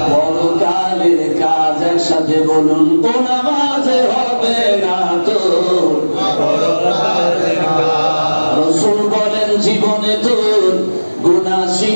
পরকালের কাজ। একসাথে বলুন, ও নামাজ হবে না তোর পরকালের কাজ। রাসূল বলেন, জীবনে তোর গুনাহ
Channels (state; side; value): inverted; both; correlation -1.00